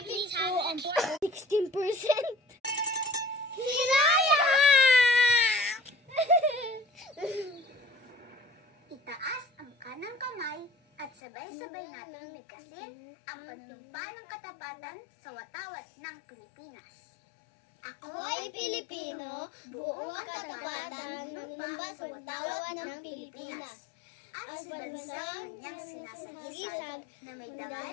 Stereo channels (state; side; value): drops out; right; at 11.1 s